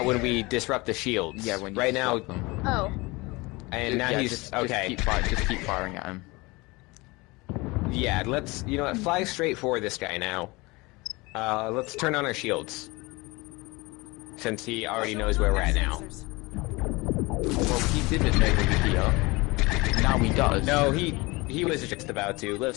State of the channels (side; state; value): right; quieter; 23.9 dB